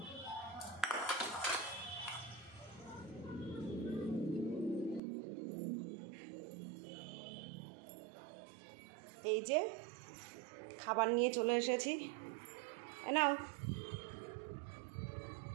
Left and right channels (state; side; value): drops out; left; at 5.0 s